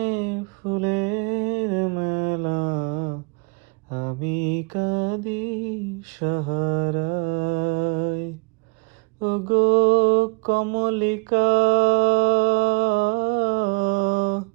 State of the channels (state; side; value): quieter; left; 32.6 dB